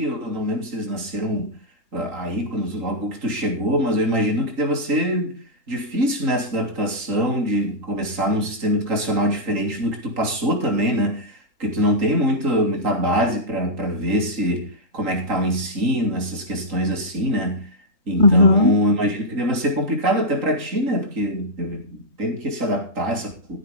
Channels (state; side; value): late; left; 3.8 ms